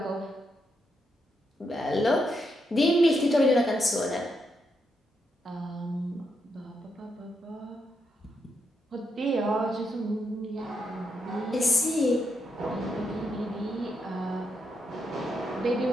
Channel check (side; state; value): both; normal; correlation 0.81